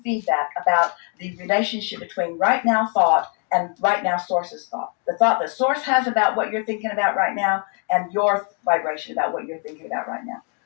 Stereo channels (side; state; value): right; quieter; 39.1 dB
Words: feedback about the relationship between right now thought and right now source's thought. The thought that source has about what you're thinking about right now and your vibration about what you're thinking about right now.